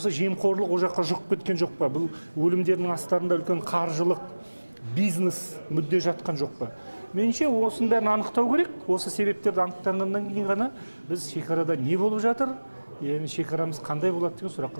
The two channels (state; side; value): inverted; both; correlation -1.00